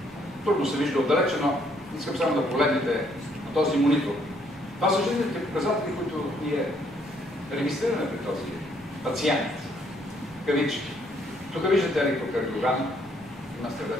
Трудно се вижда отдалече, но искам само да погледнете на този монитор. Това са жизнените показатели, които ние регистрираме при този пациент. Кавички. Тук виждате електрокардиограма, има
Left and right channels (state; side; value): normal; both; correlation 0.68